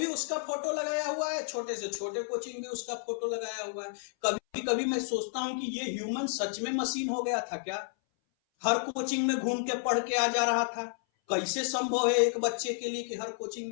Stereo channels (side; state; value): right; silent; 57 dB below the other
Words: उसका फोटो लगाया हुआ है, छोटे से छोटे कोचिंग भी उसका फोटो लगाया हुआ है। कभी कभी मैं सोचता हूं कि ये ह्यूमन सच में मशीन हो गया था क्या? हर कोचिंग में घूम के पढ़ के आ जा रहा था। कैसे संभव है एक बच्चे के लिए कि हर कोचिंग